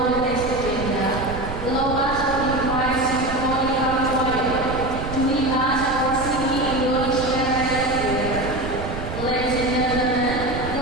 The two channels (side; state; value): right; noise; rumble, 7 dB below the sound